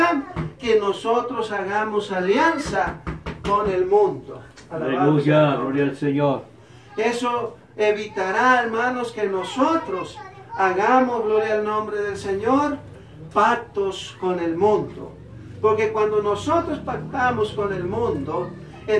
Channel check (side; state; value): both; identical; correlation 1.00